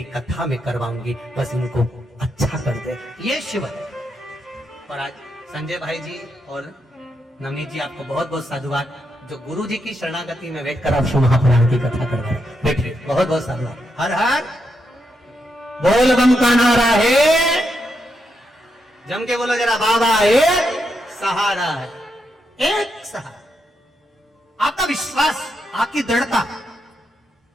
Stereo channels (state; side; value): normal; both; correlation 0.82